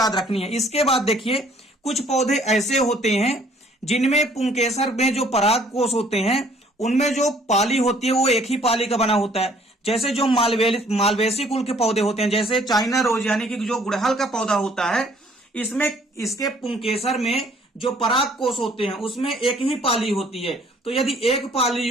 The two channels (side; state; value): both; normal; correlation 0.59